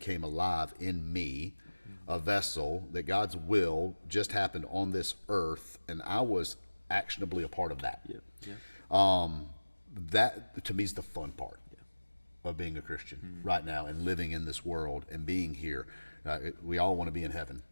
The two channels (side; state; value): both; inverted; correlation -1.00